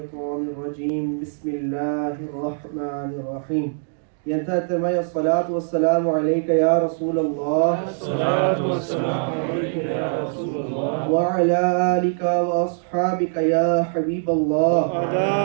الرجيم بسم الله الرحمن الرحيم ينتهي الصلاة والسلام عليك يا رسول الله الصلاة والسلام عليك يا رسول الله وعلى آلك وأصحابك يا حبيب الله وعلى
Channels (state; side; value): silent; left; digital silence